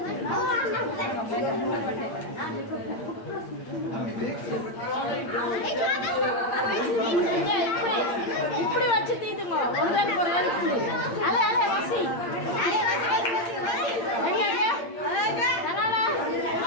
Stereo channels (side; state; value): right; late; 8.7 ms